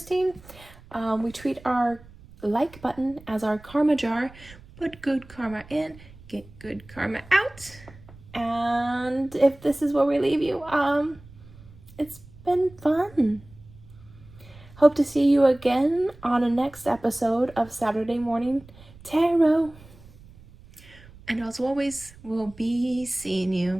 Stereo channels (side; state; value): right; noise; rumble, 22 dB below the sound